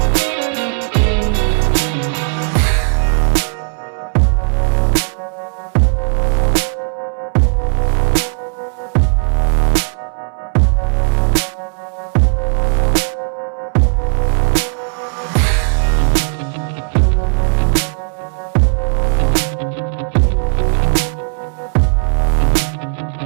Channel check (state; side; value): silent; left; 58 dB below the other